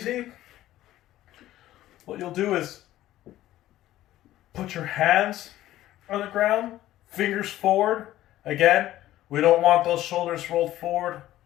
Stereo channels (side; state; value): right; quieter; 14.3 dB